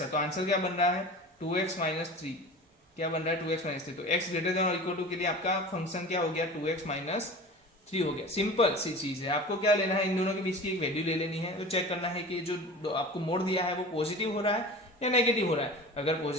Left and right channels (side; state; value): both; normal; correlation 0.36